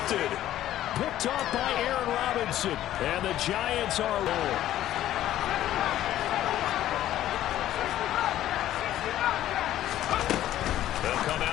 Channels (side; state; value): right; quieter; 13.0 dB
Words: Picked off by Aaron Robinson. And the Giants are rolling. They'll come